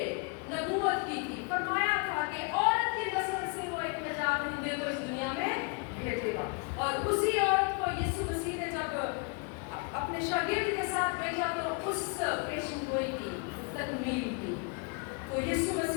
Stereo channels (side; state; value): right; quieter; 33.3 dB